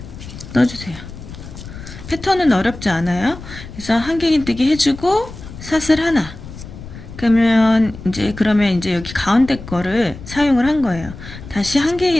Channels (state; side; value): noise; left; rumble, 14 dB below the sound